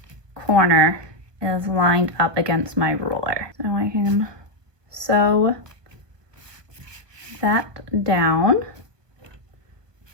corner is lined up against my ruler. So I can sew that down.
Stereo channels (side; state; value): left; late; 1.4 ms